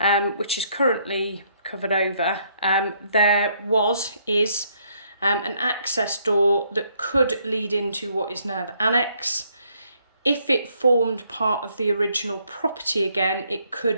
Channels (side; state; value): both; inverted; correlation -0.69